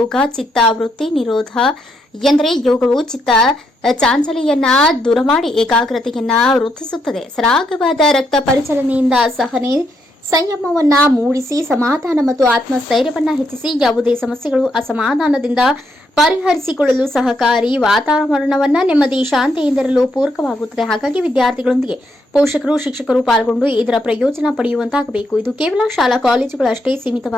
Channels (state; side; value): normal; both; correlation 0.78